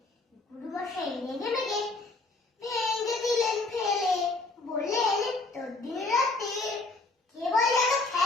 গুরুমশাই রেগে মেগে ভেঙে দিলেন ফেলে। বললেন, তোর দিন রাতে কেবল যেন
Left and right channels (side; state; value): right; quieter; 3.3 dB